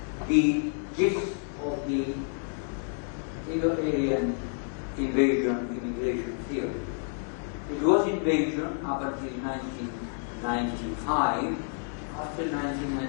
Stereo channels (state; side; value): silent; right; 58 dB below the other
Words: the gist of the Indo-Aryan invasion immigration theory. It was invasion up until 1995. After